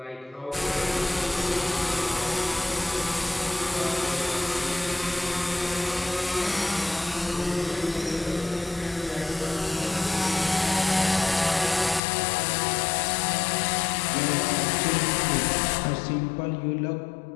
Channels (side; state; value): right; drops out; at 12.0 s